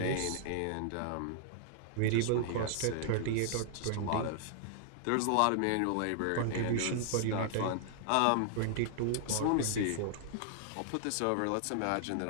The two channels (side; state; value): both; different; correlation -0.01